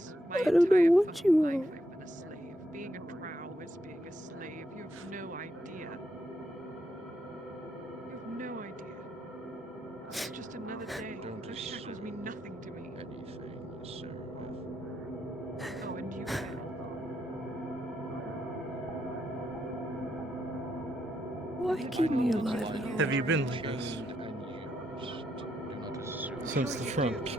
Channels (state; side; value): normal; both; correlation 0.79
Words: I don't know what you are. I've been a slave. Being a drow is being a slave. You have no idea. You have no idea. It's just another day. Those shackles mean nothing to me. Anything, Seraph. Oh, and you failed. Why keep me alive at all? Have you been like this? Since the front.